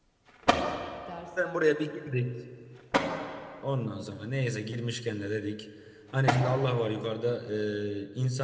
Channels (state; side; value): identical; both; correlation 1.00